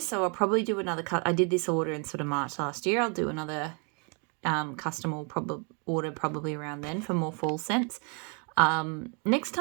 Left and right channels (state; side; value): quieter; left; 37.2 dB